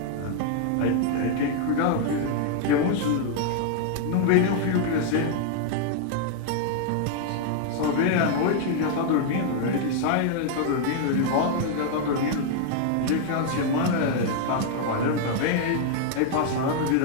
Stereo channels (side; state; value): both; different; correlation 0.00